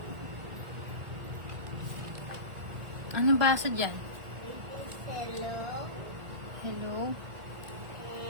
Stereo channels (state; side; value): late; left; 1.4 ms